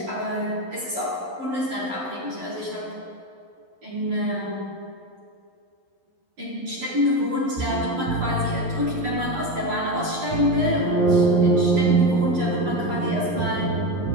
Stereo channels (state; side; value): late; left; 11 ms